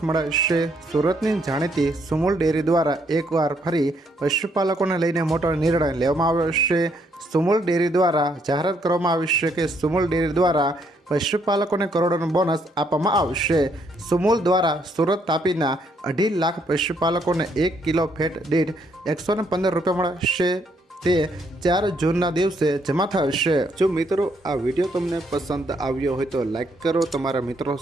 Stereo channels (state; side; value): normal; both; correlation 0.71